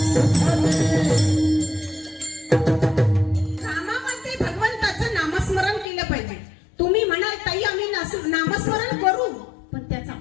कामामध्ये भगवंताचं नामस्मरण केलं पाहिजे. तुम्ही म्हणाल ताई आम्ही नामस्मरण करू, पण त्याचा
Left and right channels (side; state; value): right; drops out; at 5.9 s